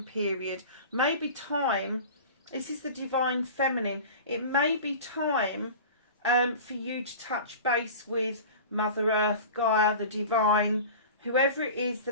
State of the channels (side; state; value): both; inverted; correlation -0.36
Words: period, maybe time, this is the Divine Feminine, it may be time for you to touch base with Mother Earth, Gaia, the Divine, whoever it is